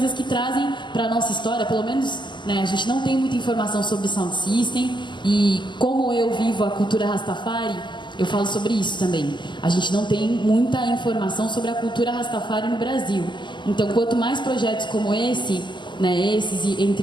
que trazem para a nossa história, pelo menos, né, a gente não tem muita informação sobre sound system, e como eu vivo a cultura Rastafari, eu falo sobre isso também. A gente não tem muita informação sobre a cultura Rastafari no Brasil. Então, quanto mais projetos como esse, né, esses e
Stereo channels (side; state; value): right; late; 0.22 ms